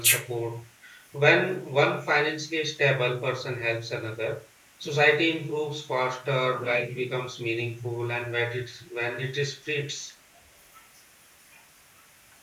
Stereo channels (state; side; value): identical; both; correlation 1.00